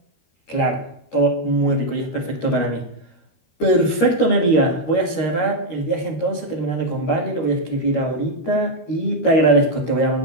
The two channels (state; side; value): late; right; 13 ms